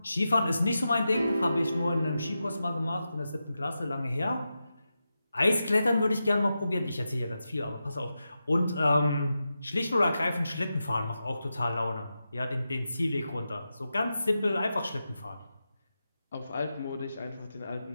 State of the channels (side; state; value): both; inverted; correlation -0.90